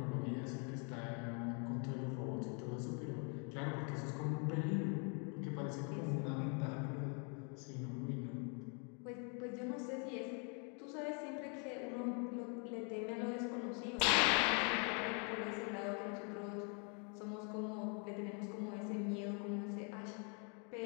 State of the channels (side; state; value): right; quieter; 38.0 dB